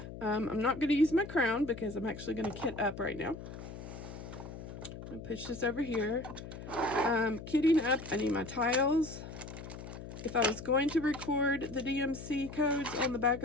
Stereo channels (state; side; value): noise; left; hum, 11 dB below the sound